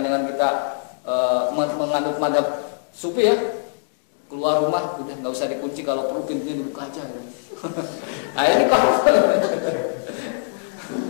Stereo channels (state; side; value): silent; right; digital silence